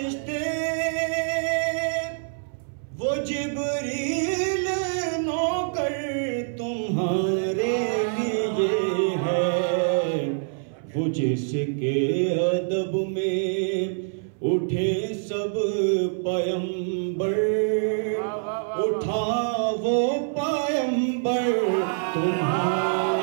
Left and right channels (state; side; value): silent; left; 61 dB below the other